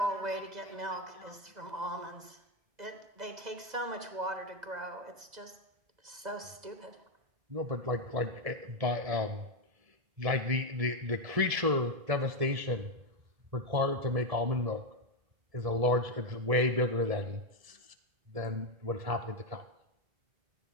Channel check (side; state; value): left; late; 2.0 ms